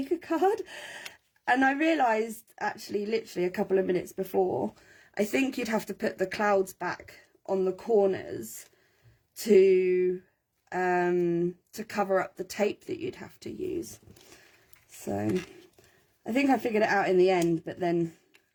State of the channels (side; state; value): both; identical; correlation 1.00